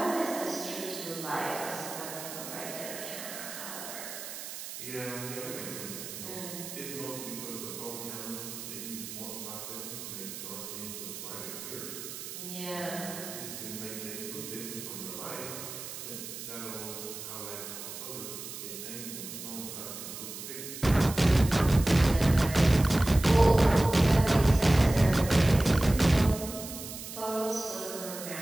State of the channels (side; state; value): right; noise; hiss, 10 dB below the sound